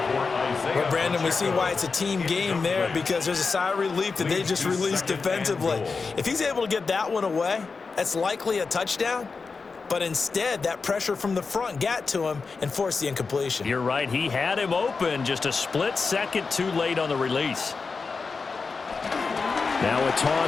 Well, Brandon, we see why it's a team game there because there's a sigh of relief that they just released defensively. If he's able to get that one away, that's likely a touchdown. But instead, that pressure from the front got to him and forced the incompletion. You're right. He had him open just a split second too late on the release. Now a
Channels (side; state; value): right; quieter; 4.6 dB